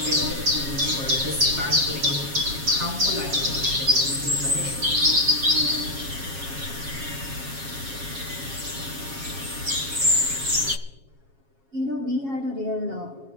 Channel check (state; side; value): late; left; 7.3 ms